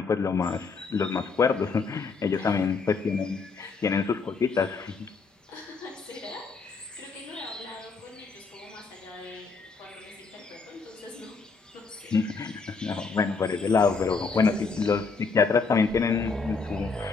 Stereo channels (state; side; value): quieter; right; 4.6 dB